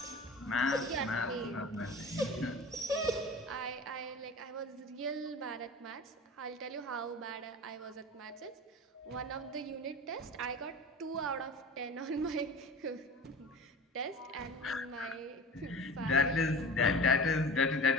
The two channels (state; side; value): normal; both; correlation 0.36